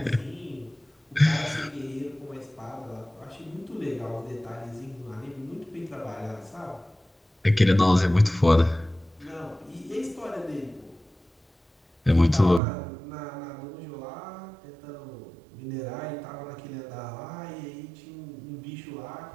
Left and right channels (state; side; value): drops out; left; at 12.6 s